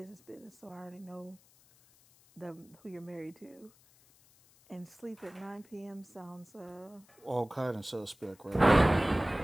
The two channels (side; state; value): left; noise; hiss, 28 dB below the sound